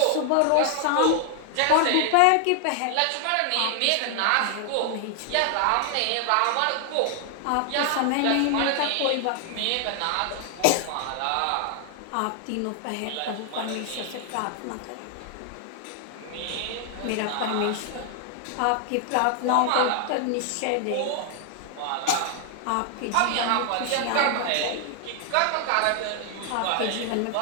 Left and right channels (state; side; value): different; both; correlation 0.00